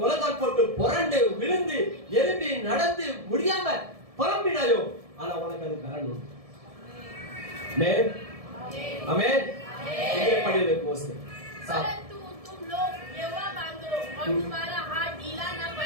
போட்டு புரண்டு விழுந்து எழும்பி நடந்து முடியாம புலம்பினாயோ ஆனா உனக்கு அது பலன் உண்டு ஆமென் ஆமென் இங்கே படியே கோஸ் परंतु तुम लोग यहोवा मांगो और तुम्हारा हाथ ढीला न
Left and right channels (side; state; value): left; late; 1.7 ms